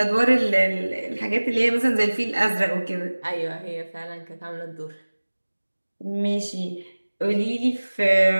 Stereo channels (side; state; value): both; inverted; correlation -1.00